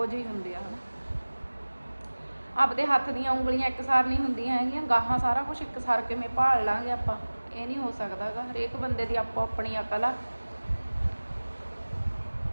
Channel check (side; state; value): both; inverted; correlation -1.00